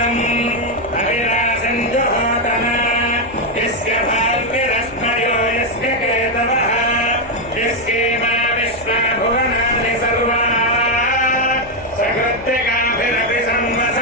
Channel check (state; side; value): noise; left; hum, 19 dB below the sound